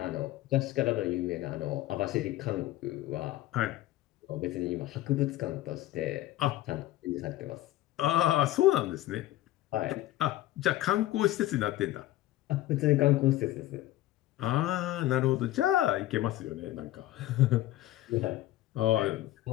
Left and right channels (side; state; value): right; quieter; 15.2 dB